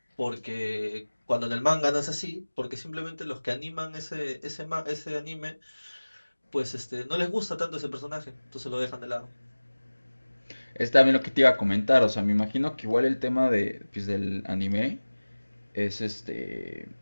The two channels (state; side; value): inverted; both; correlation -1.00